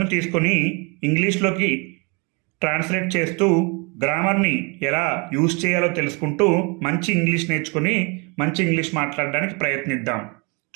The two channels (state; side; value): quieter; left; 30.9 dB